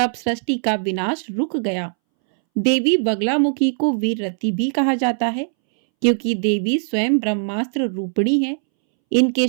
सृष्टि का विनाश रुक गया। देवी बगलामुखी को वीररती भी कहा जाता है, क्योंकि देवी स्वयं ब्रह्मास्त्र रूपिणी है। इनके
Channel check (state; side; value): silent; left; 64 dB below the other